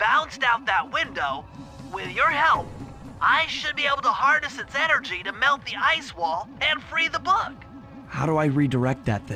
out that window, with your help, I should be able to harness its energy to melt the ice wall and free the bug. How do I redirect that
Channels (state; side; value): identical; both; correlation 1.00